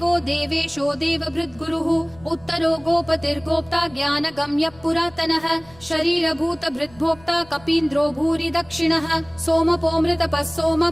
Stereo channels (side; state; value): left; noise; rumble, 25 dB below the sound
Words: देवेशो देवभृद्गुरुः उत्तरो गोपतिर्गोप्ता ज्ञानगम्यः पुरातनः शरीरभूतभृद्भोक्ता कपीन्द्रो भूरि दक्षिणः सोमपोऽमृतपः